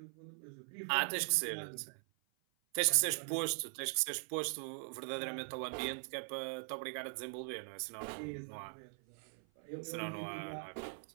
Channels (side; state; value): left; silent; 51 dB below the other